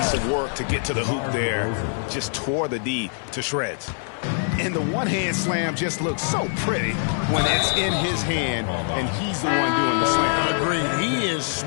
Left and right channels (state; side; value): silent; right; 57 dB below the other